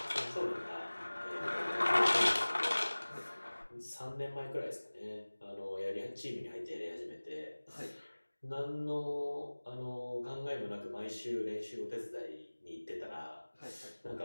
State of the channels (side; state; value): both; inverted; correlation -1.00